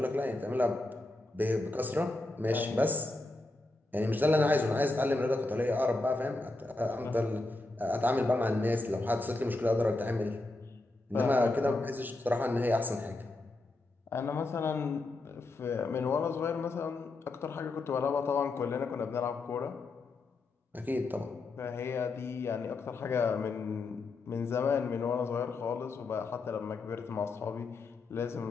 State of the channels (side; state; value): right; quieter; 3.0 dB